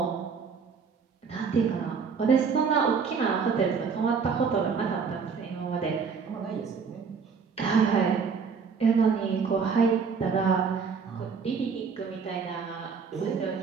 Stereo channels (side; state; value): left; quieter; 5.7 dB